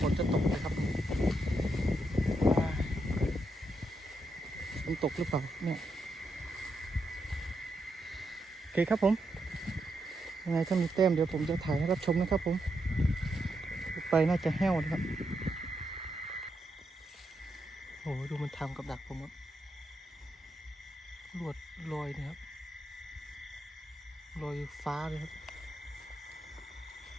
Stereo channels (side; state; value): both; normal; correlation 0.82